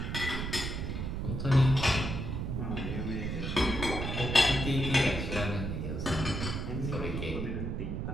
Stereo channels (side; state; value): right; noise; rumble, 3 dB below the sound